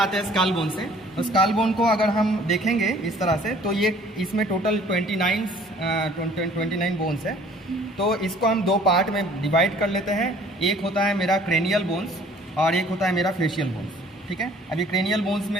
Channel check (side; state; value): both; normal; correlation 0.54